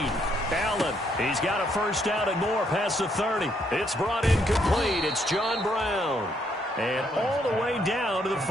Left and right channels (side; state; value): both; normal; correlation 0.72